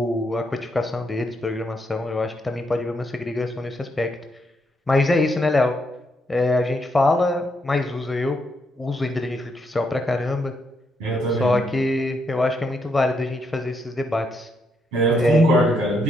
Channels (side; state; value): both; normal; correlation 0.77